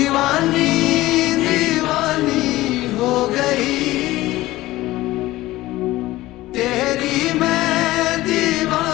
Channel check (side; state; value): right; quieter; 17.3 dB